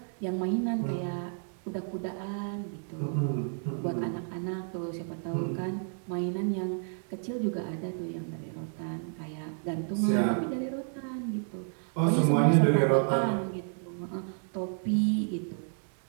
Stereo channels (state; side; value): silent; left; 57 dB below the other